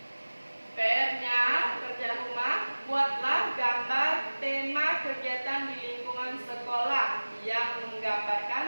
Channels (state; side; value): inverted; both; correlation -1.00